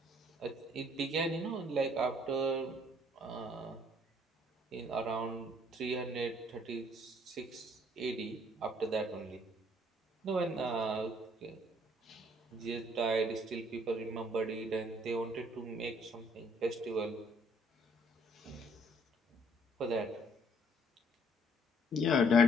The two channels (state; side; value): normal; both; correlation 0.63